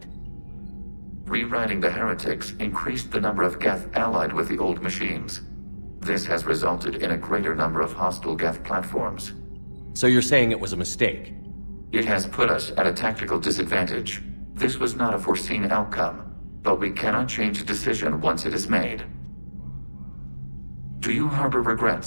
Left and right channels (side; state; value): both; inverted; correlation -1.00